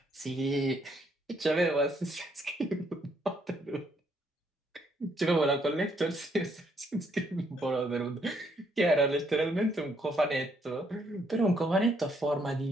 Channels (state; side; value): normal; both; correlation 0.71